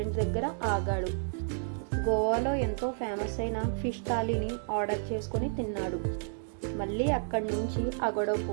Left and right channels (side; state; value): left; silent; digital silence